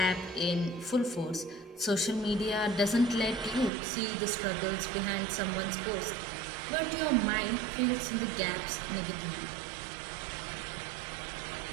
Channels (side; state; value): left; drops out; at 3.7 s